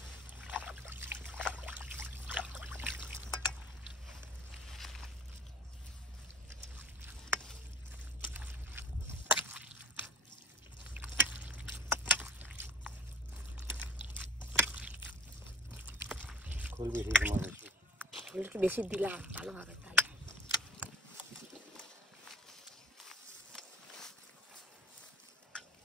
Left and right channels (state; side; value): normal; both; correlation 0.47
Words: খোল বেশি তোমার খোল একটু বেশি দিলাম ভালো হবে তাহলে।